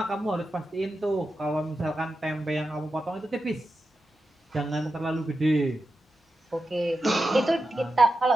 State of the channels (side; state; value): both; normal; correlation 0.90